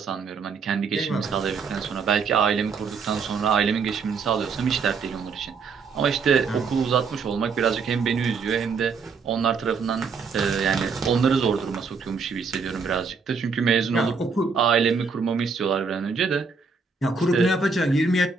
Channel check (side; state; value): left; quieter; 5.0 dB